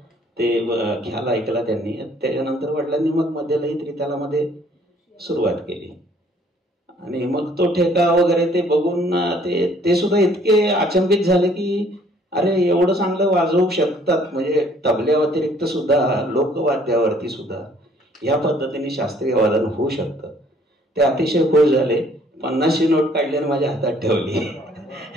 ते ख्याल ऐकला त्यांनी. त्याच्यानंतर वडिलांनी मग मध्यलयी त्रितालामध्ये सुरुवात केली. आणि मग तो ठेका वगैरे ते बघून ते सुद्धा इतके अचंबित झाले की अरे एवढं चांगलं वाजवू शकतात, म्हणजे तबल्या व्यतिरिक्त सुद्धा लोकवाद्यावरती सुद्धा ह्या पद्धतीने शास्त्रीय वादन होऊ शकतं. ते अतिशय खुश झाले. 50ची नोट काढली आणि माझ्या हातात ठेवली.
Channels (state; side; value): normal; both; correlation 0.60